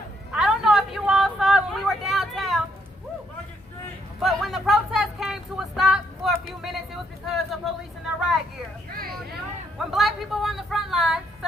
I don't know if you all saw it when we were downtown. But when the protest came to a stop for a few minutes, it was because of police in their riot gear. When black people were on the front line,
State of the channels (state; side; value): normal; both; correlation 0.72